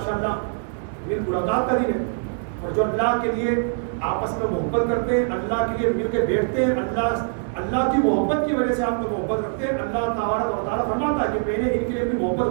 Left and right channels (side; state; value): left; silent; digital silence